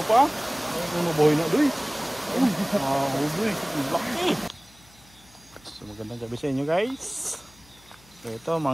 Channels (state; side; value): noise; left; hum, 27 dB below the sound